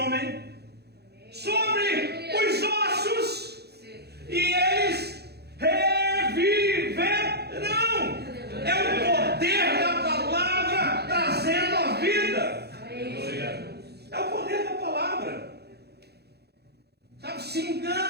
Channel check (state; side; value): late; left; 0.48 ms